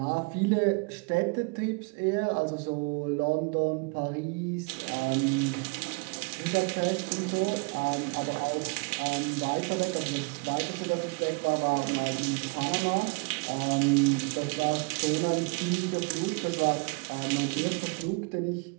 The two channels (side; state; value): left; quieter; 32.3 dB